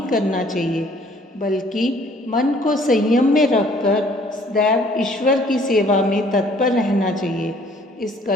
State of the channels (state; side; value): normal; both; correlation 0.58